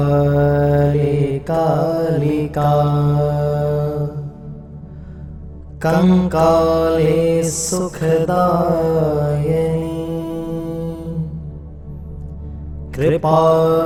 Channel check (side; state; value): both; identical; correlation 1.00